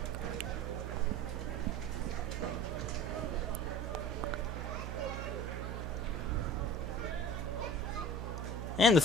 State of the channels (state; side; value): noise; right; hum, 4 dB below the sound